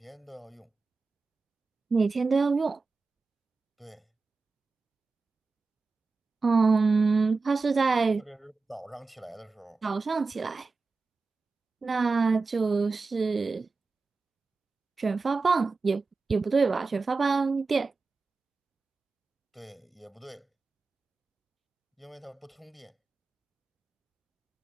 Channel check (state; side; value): quieter; left; 4.1 dB